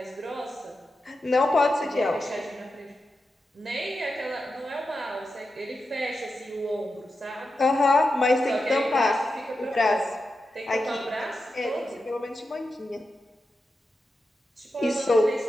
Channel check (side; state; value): both; normal; correlation 0.89